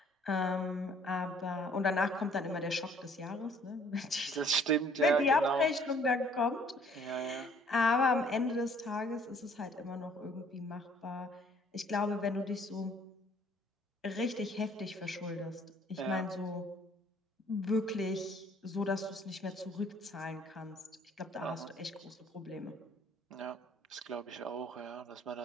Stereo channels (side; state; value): both; normal; correlation 0.59